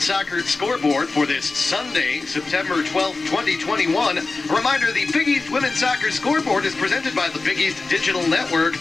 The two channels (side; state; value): right; quieter; 3.6 dB